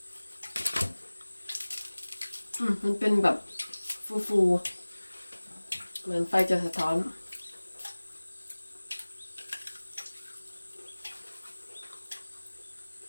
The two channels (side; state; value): both; inverted; correlation -1.00